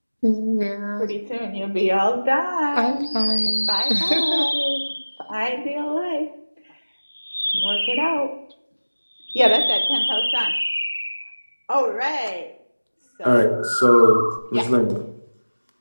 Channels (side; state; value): both; inverted; correlation -1.00